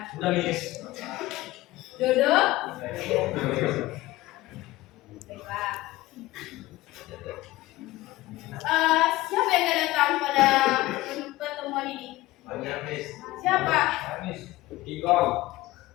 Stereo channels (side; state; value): right; quieter; 18.0 dB